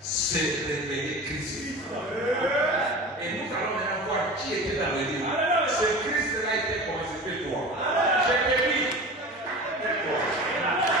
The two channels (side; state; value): both; normal; correlation 0.34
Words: révéler Christ. Et nous allons maintenant voir qui était dans le livre. Ce Christ-là était constitué toi. Je te dis.